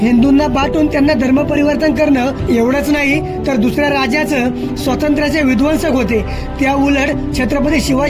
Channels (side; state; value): both; identical; correlation 1.00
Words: हिंदूंना बाटून त्यांना धर्म परिवर्तन करणं एवढंच नाही तर दुसऱ्या राज्याचं स्वातंत्र्याचे विध्वंसक होते. त्या उलट छत्रपती